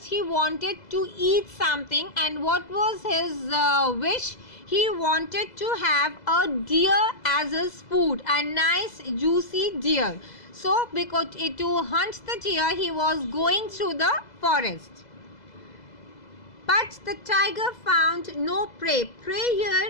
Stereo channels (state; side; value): late; right; 2.0 ms